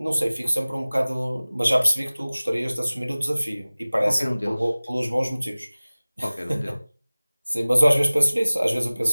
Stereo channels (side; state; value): both; inverted; correlation -0.99